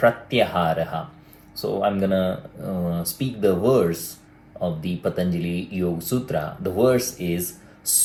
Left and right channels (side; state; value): both; identical; correlation 1.00